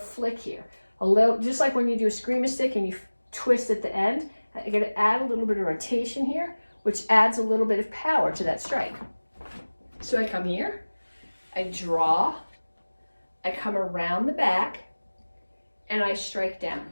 here. A little, just like when you do a screamer stick and you twist at the end, you're going to add a little bit of rotation here, which adds a little bit of power to that strike. So I come here, I draw, I come around the back, and I strike down.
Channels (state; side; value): inverted; both; correlation -1.00